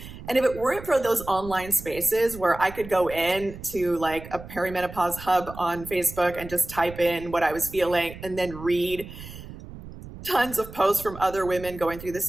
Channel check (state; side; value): noise; right; rumble, 14 dB below the sound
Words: And if it weren't for those online spaces where I could go in to like a perimenopause hub on Facebook and just type in what I was feeling and then read tons of posts from other women going through the